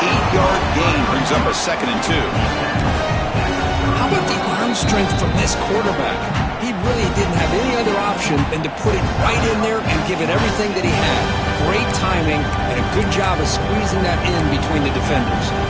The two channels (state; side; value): identical; both; correlation 1.00